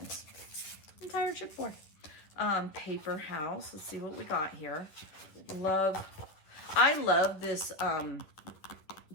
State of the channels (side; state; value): right; late; 10 ms